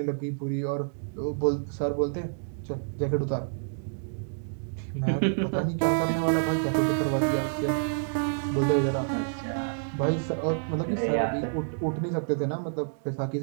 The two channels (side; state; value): left; silent; digital silence